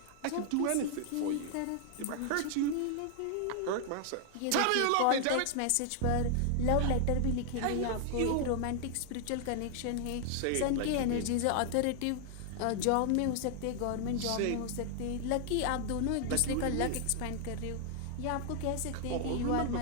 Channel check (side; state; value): both; different; correlation 0.00